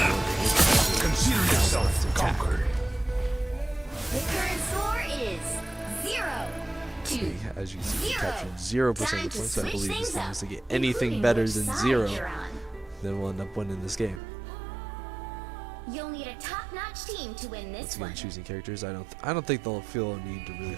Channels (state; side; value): drops out; left; at 14.2 s